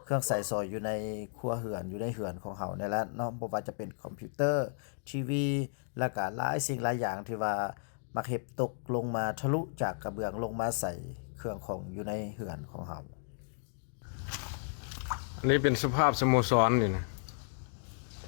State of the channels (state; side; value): silent; right; digital silence